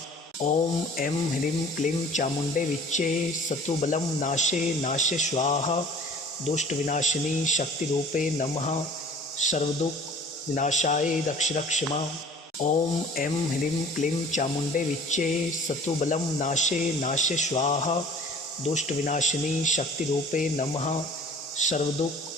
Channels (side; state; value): both; normal; correlation 0.48